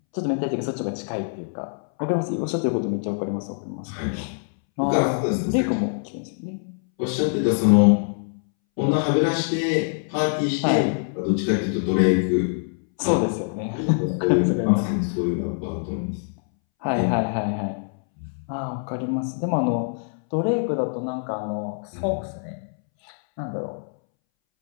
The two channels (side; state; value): right; silent; 62 dB below the other